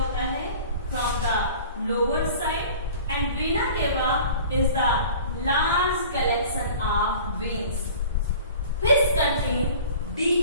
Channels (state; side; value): inverted; both; correlation -0.43